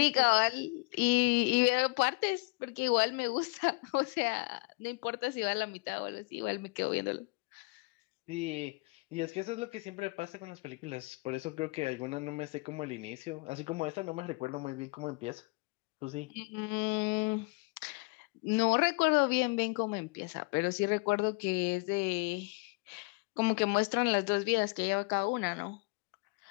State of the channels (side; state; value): right; quieter; 27.8 dB